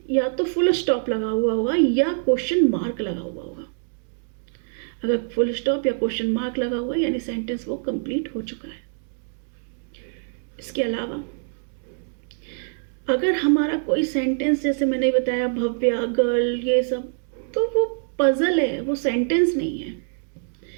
या तो फुल स्टॉप लगा हुआ होगा या क्वेश्चन मार्क लगा हुआ होगा. अगर फुल स्टॉप या क्वेश्चन मार्क लगा हुआ है यानी सेंटेंस वो कंप्लीट हो चुका है. इसके अलावा अगर हमारा कोई सेंटेंस, जैसे मैंने बताया भव्या, गर्ल, ये सब, तो वो पजल है, वो सेंटेंस नहीं है.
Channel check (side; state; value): left; silent; digital silence